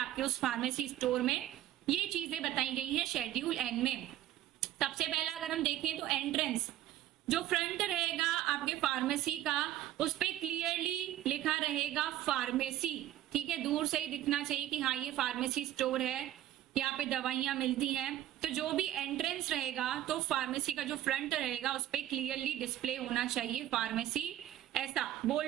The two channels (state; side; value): quieter; left; 13.2 dB